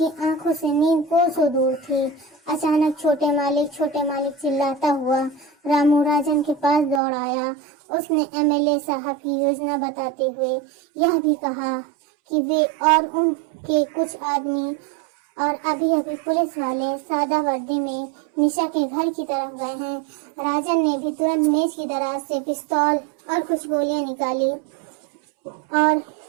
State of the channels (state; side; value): drops out; left; at 7.0 s